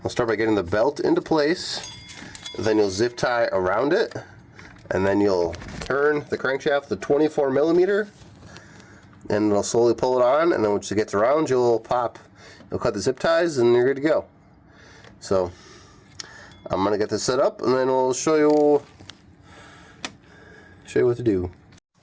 start by getting the belt into place, then you'll zip tie around it, and then you'll turn the crankshaft to 24 millimeter, and it'll slowly pull it on, and then once it gets around, you'll cut the zip ties, and you're good to go. So I'm gonna get this set up, and then we'll show you what to do.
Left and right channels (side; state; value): both; identical; correlation 1.00